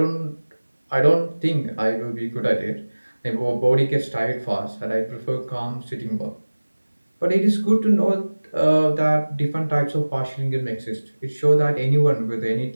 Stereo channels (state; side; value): inverted; both; correlation -1.00